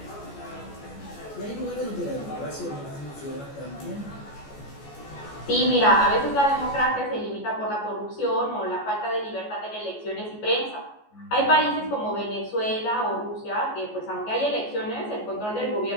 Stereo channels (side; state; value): right; late; 14 ms